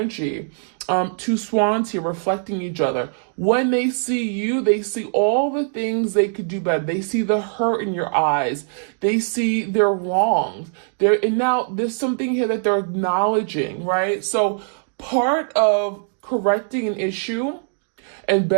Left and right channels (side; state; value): left; silent; digital silence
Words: Two swans here reflecting each other. When they see you, they see all the things they could do better. They see the hurt in your eyes. They see their wrongs. And now there's something here that they're acknowledging, right? So part of correcting an issue and